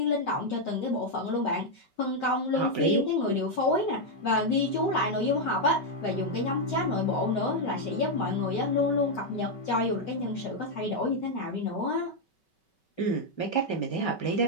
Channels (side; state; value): right; late; 5.2 ms